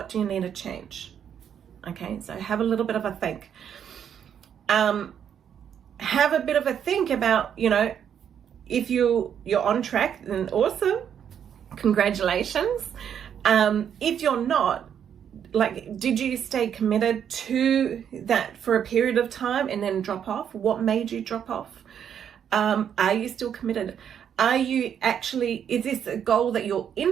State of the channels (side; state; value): left; quieter; 8.6 dB